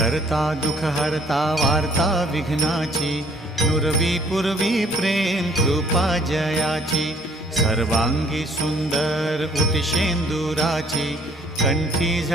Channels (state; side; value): normal; both; correlation 0.60